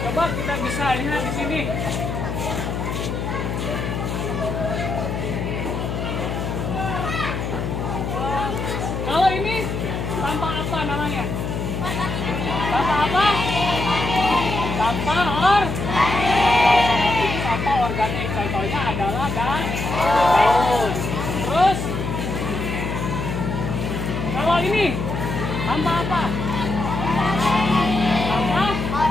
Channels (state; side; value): noise; left; hum, 3 dB below the sound